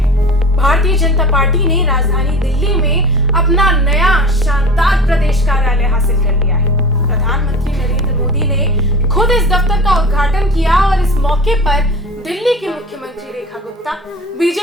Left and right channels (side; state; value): both; normal; correlation 0.36